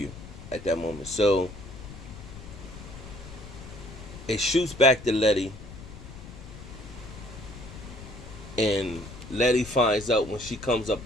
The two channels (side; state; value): left; noise; rumble, 14 dB below the sound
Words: at that moment. So it shoots back to Letty, and Letty finds out when she comes up